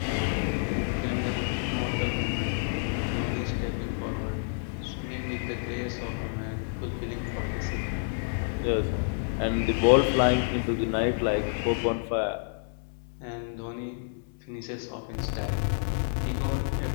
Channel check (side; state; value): right; silent; 59 dB below the other